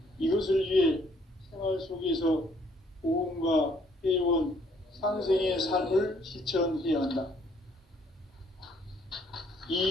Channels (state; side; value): normal; both; correlation 0.65